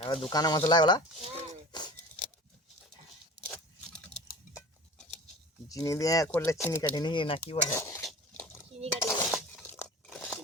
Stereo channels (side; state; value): both; normal; correlation 0.38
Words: এবার দোকানে মশলা ওলা চিনি দিয়ে করলে চিনি কাটিনি না কি বলে? চিনি কাটি